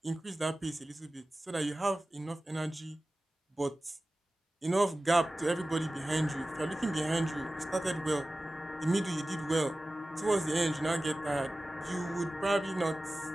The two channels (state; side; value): normal; both; correlation 0.96